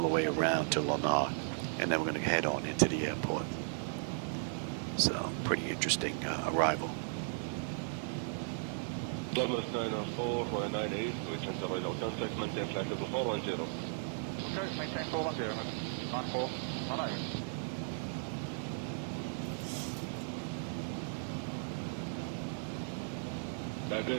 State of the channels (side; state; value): left; silent; digital silence